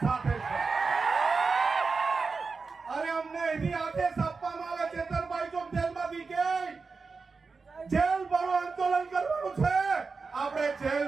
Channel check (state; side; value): quieter; left; 4.5 dB